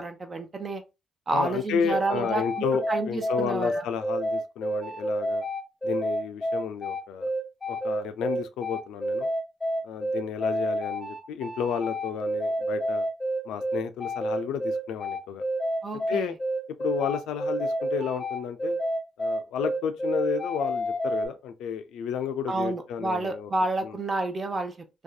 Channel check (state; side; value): normal; both; correlation 0.75